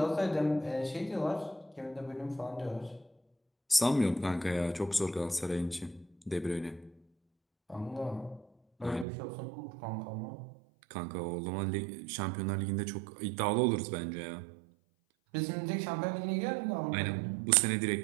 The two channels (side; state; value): left; drops out; at 9.1 s